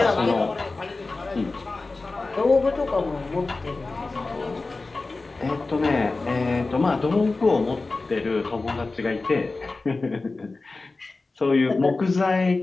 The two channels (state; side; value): quieter; right; 3.5 dB